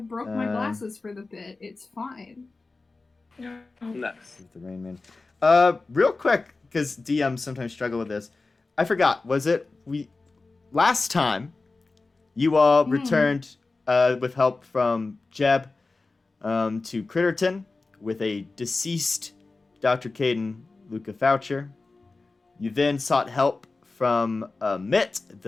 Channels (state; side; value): quieter; right; 3.6 dB